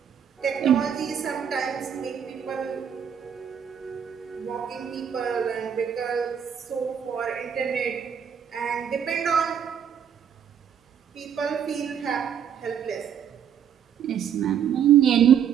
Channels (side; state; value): left; quieter; 8.3 dB